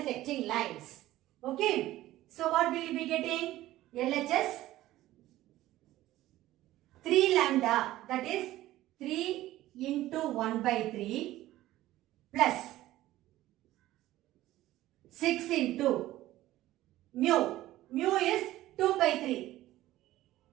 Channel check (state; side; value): quieter; left; 15.4 dB